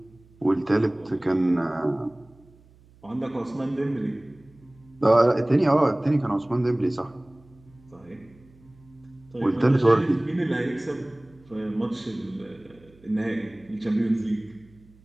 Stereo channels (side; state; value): right; noise; hum, 27 dB below the sound